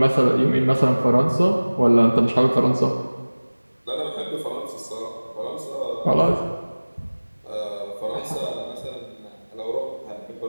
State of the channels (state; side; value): inverted; both; correlation -1.00